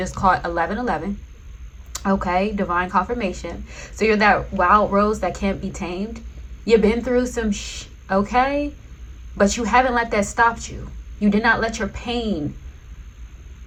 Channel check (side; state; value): both; identical; correlation 1.00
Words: caught 1111. Okay, divine confirmation. So you're that wild rose that can't be tamed. You've been through some okay? But you haven't let that stop you. You did not let your pain